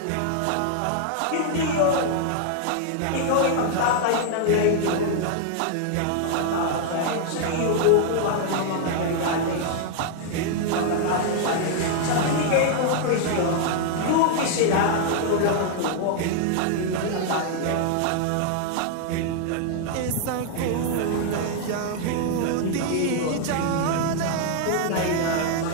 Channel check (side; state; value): both; different; correlation 0.00